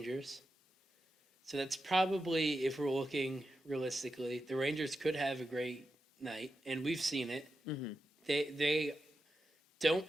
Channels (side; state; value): both; normal; correlation 0.89